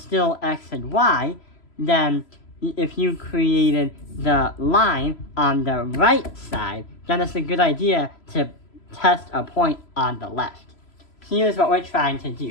x and y, then if you created the line on the right side, then it's a good idea to test a point on the left. Here's what we're trying to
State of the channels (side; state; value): right; late; 3.0 ms